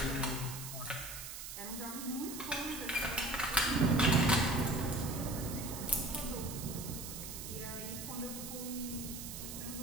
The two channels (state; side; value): noise; right; hiss, 8 dB below the sound